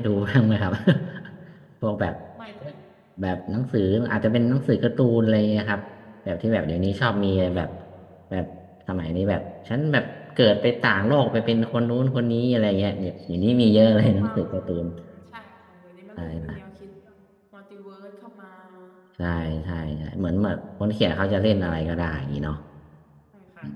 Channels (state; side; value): identical; both; correlation 1.00